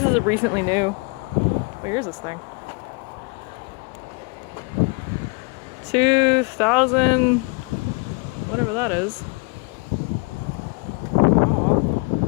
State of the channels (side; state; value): right; quieter; 29.4 dB